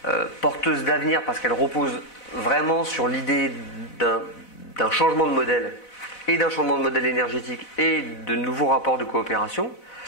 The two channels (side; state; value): right; late; 4.0 ms